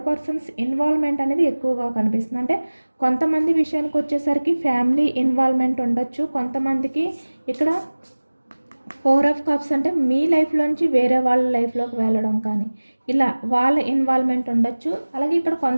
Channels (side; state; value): both; inverted; correlation -1.00